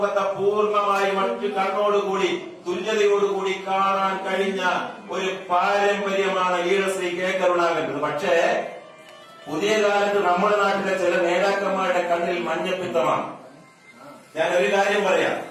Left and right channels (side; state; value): both; identical; correlation 1.00